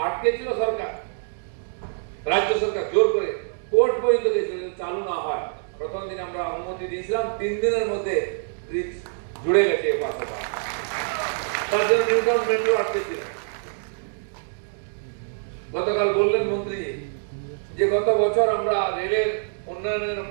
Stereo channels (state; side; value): silent; left; digital silence